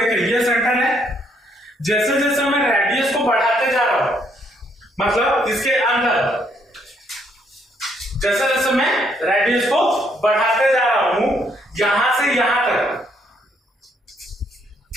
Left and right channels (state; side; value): normal; both; correlation 0.70